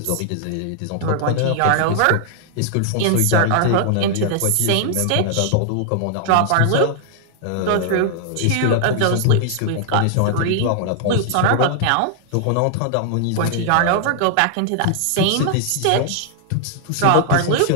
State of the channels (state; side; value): different; both; correlation -0.01